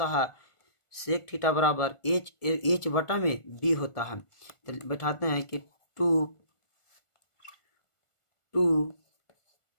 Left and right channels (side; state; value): right; late; 1.4 ms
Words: है, सेक थीटा बराबर एच बटा में बी होता है। तो बैठाते हैं कि 2